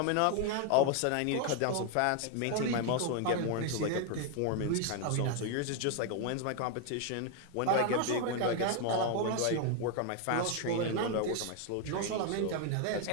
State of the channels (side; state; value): both; different; correlation 0.01